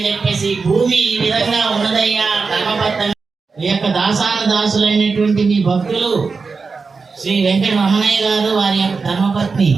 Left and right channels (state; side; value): quieter; left; 4.7 dB